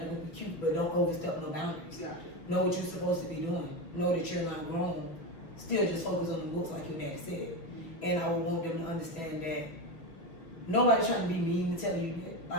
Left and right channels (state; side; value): late; right; 6.1 ms